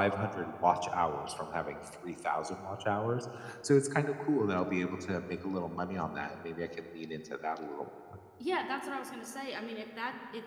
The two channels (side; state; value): both; identical; correlation 1.00